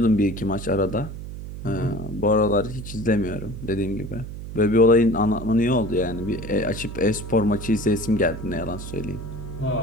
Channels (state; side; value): noise; right; hum, 9 dB below the sound